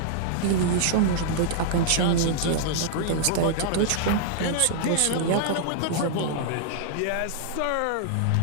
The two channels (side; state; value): both; different; correlation -0.01